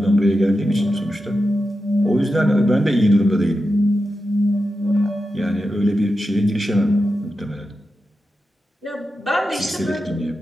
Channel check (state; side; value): normal; both; correlation 0.90